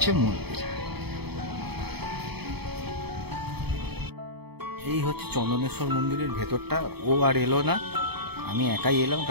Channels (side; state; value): left; late; 0.97 ms